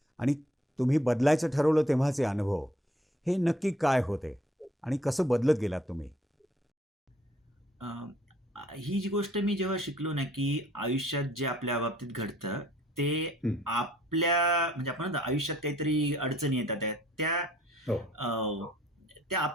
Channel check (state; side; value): normal; both; correlation 0.60